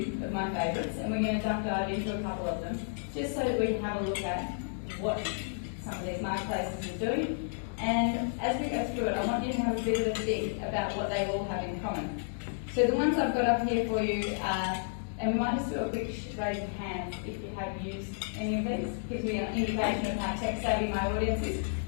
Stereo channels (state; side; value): silent; right; digital silence